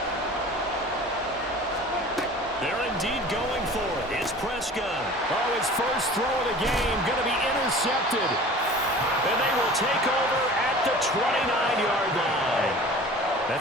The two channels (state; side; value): normal; both; correlation 0.42